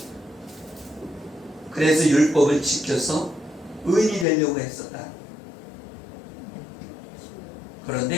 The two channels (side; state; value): right; drops out; at 4.2 s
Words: 그래서 율법을 지켜서 의인이 되려고 했었다.